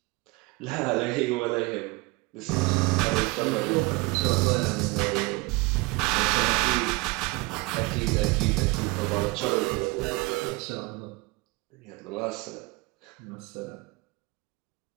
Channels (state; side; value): quieter; left; 24.4 dB